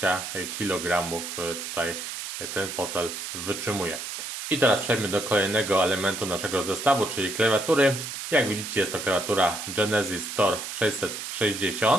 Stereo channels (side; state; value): right; noise; hiss, 7 dB below the sound